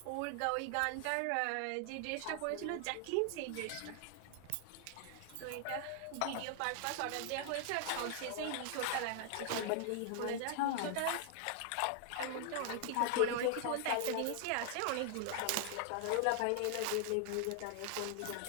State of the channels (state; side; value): different; both; correlation 0.00